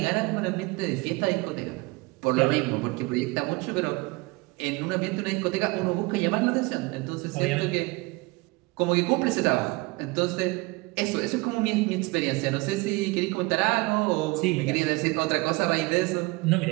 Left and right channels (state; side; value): quieter; left; 24.8 dB